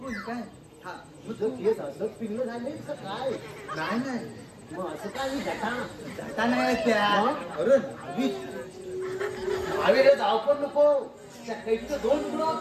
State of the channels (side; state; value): both; identical; correlation 1.00